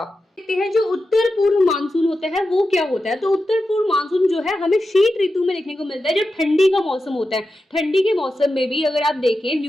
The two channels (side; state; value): both; normal; correlation 0.91